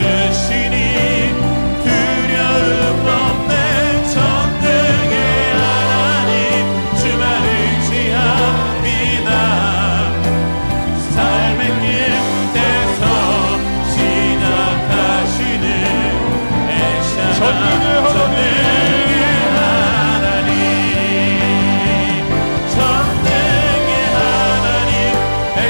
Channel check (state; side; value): inverted; both; correlation -1.00